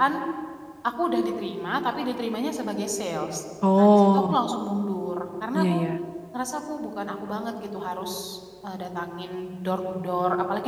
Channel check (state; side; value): identical; both; correlation 1.00